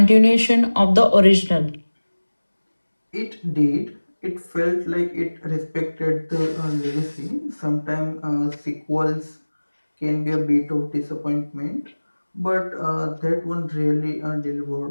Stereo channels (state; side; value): inverted; both; correlation -1.00